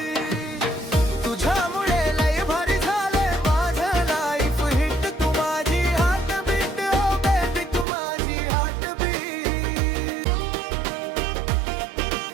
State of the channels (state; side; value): drops out; left; at 7.9 s